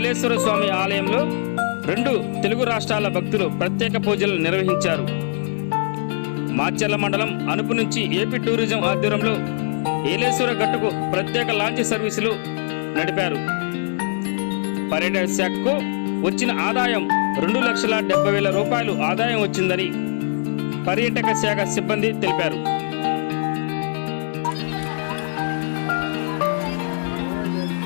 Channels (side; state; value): right; silent; digital silence